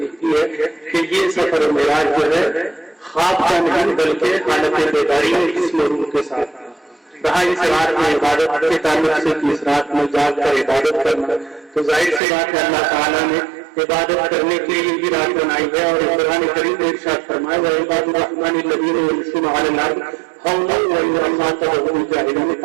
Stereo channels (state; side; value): drops out; left; at 12.2 s